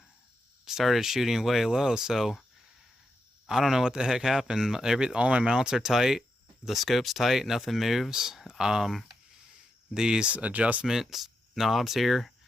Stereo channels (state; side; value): normal; both; correlation 0.85